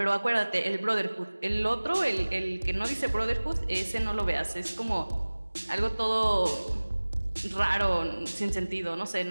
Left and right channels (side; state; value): both; inverted; correlation -1.00